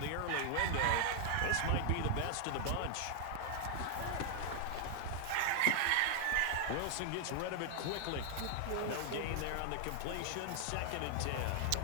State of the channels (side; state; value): both; different; correlation 0.00